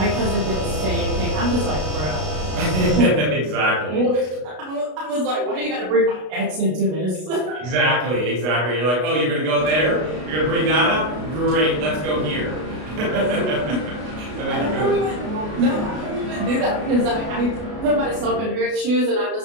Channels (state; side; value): late; left; 33 ms